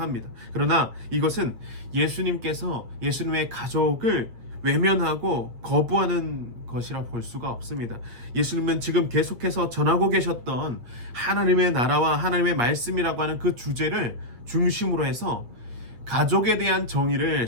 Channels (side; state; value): left; late; 8.6 ms